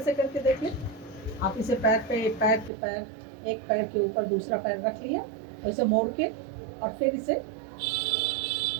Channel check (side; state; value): left; drops out; at 2.7 s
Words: से करके देख लें। आप इसे पैर एक पैर के ऊपर दूसरा पैर रख लिया, तो इसे मोड़ के और फिर इसे,